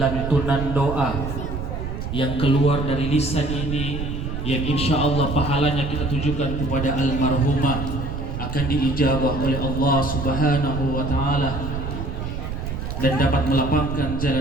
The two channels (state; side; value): noise; right; rumble, 5 dB below the sound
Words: doa yang keluar dari lisan ini, yang insya Allah pahalanya kita tujukan kepada almarhumah, akan diijabah oleh Allah Subhanahu wa taala dan dapat melapangkan